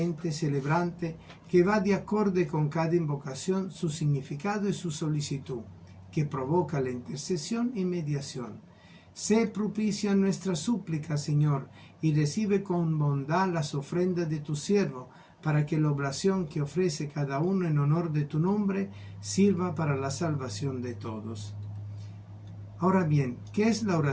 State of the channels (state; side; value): identical; both; correlation 1.00